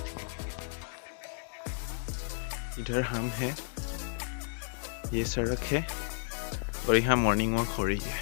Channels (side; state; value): right; silent; 56 dB below the other